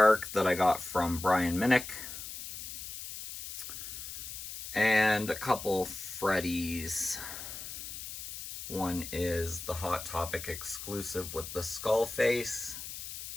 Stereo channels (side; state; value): left; noise; hiss, 9 dB below the sound